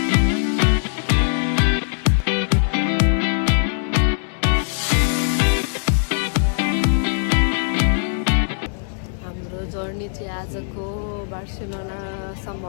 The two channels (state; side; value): silent; right; digital silence